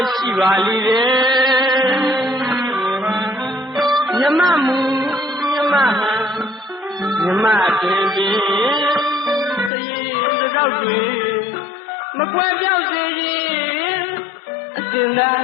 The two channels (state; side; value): drops out; right; at 9.7 s